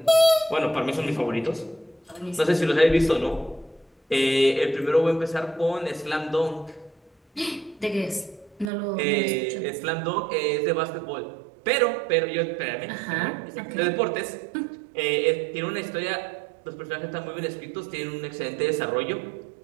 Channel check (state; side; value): drops out; left; at 8.7 s